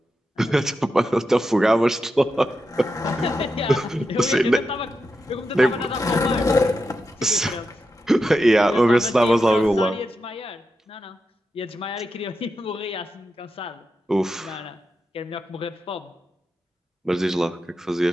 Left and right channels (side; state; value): both; normal; correlation 0.88